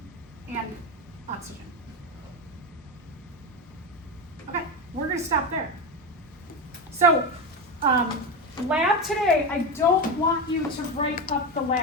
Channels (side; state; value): both; normal; correlation 0.17